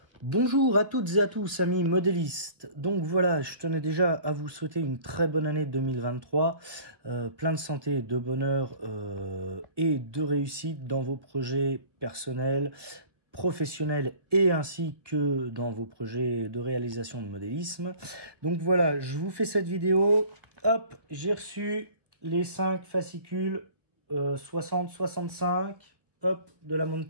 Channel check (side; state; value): left; late; 1.2 ms